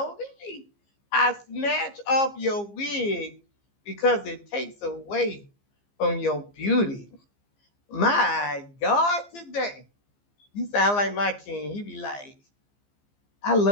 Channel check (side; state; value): right; late; 15 ms